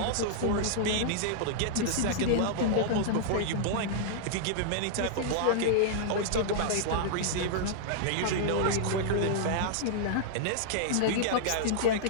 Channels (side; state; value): both; different; correlation -0.02